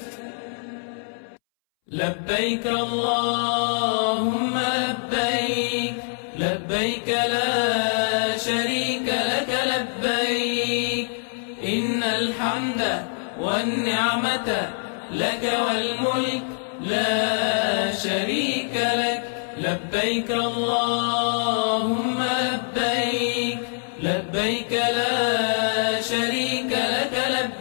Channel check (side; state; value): right; silent; 62 dB below the other